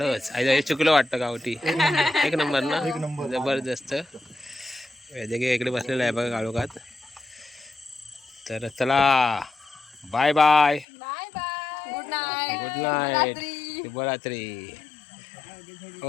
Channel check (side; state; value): right; drops out; at 10.9 s